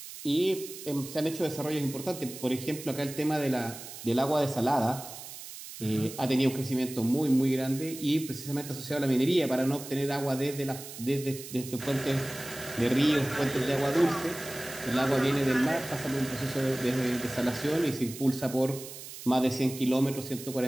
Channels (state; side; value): noise; right; hiss, 12 dB below the sound